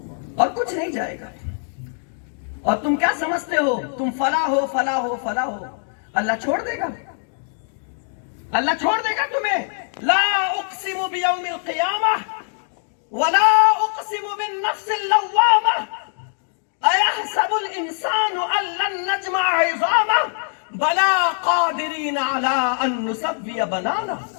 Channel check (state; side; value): silent; right; 64 dB below the other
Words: اور کچھ نہیں جائے گا۔ اور تم کیا سمجھتے ہو تم فلاح ہو، فلاح ہو، فلاح ہو؟ اللہ چھوڑ دے گا، اللہ چھوڑ دے گا تمہیں۔ لا اقسم بیوم القیامہ ولا اقسم بالنفس اللوامہ ایحسب الانسان ان لن نجمع عظامہ بلا قادرین علی ان نسوی بنانہ۔